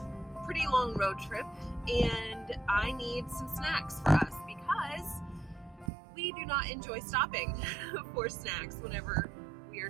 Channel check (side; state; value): left; drops out; at 5.9 s